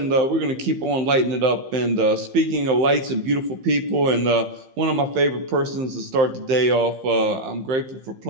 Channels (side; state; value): left; late; 15 ms